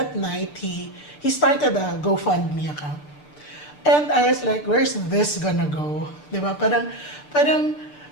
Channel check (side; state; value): right; late; 6.7 ms